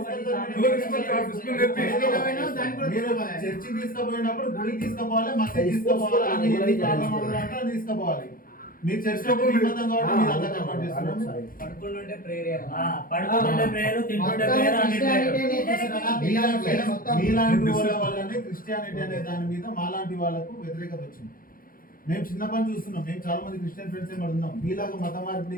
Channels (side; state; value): right; late; 0.41 ms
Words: మీరు చర్చికి తీసుకుపోయినప్పుడు గుడికి తీసుకుపోవాలి, మసీద్ తీసుకుపోవాలి, అన్ని తీసుకుపోవాలి. మీరు చర్చిలో నిబంధన కాబట్టి మీరు అంతా కంప్లీట్ చేస్తున్నారు. పడుకుంటుంటే ప్రేయర్, తింటుంటే ప్రేయర్, అన్ని ప్రేయర్. మీలాంటి వాళ్ళ వల్లనే క్రిస్టియానిటీ అనే దాని మీద మాలాంటి వాళ్ళకు వ్యతిరేకత వచ్చింది. మేము చిన్నప్పటి చూస్తున్నాం. మేము చాలా మంది క్రిస్టియన్ ఫ్రెండ్స్ ఏమి ఉన్నాం. మీలాగా మత మార్పిడి